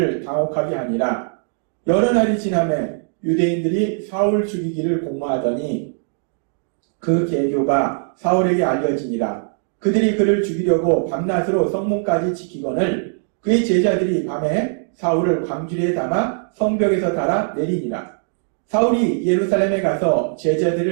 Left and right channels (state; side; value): silent; left; 65 dB below the other